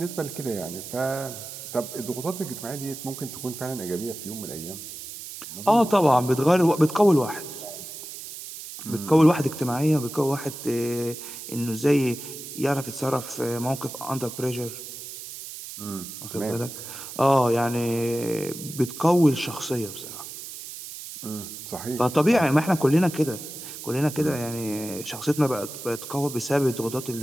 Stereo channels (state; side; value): noise; right; hiss, 11 dB below the sound